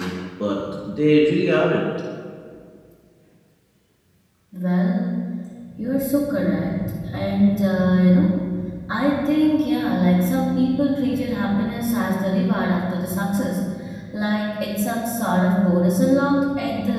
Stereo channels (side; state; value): both; identical; correlation 1.00